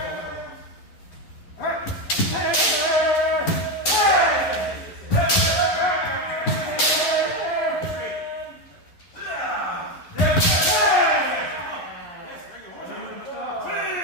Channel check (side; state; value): right; late; 11 ms